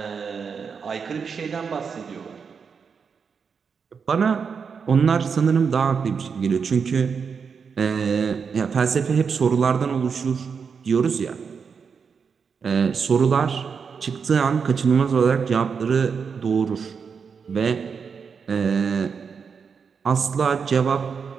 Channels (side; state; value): left; quieter; 6.0 dB